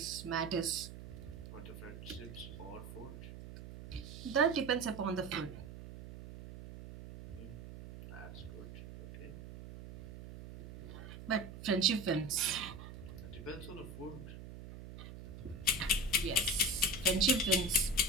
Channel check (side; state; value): right; noise; hum, 12 dB below the sound